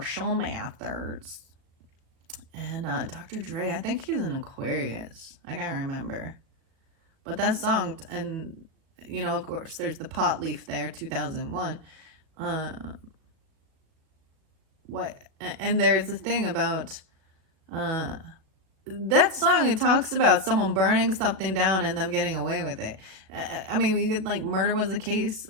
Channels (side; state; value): left; late; 37 ms